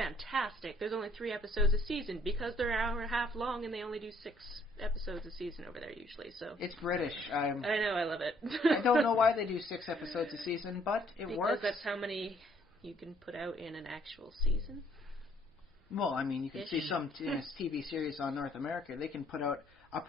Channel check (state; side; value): normal; both; correlation 0.64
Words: There's only 3 episodes a season because they're an hour and a half long, and they only do 6 episodes a season over there usually. So it's British. I know, I love it. I don't know why they do 6 episodes a season, but it works. Because that's how many you can put out in an actual season. Well, I mean, you can see some TV series on North America. They can put out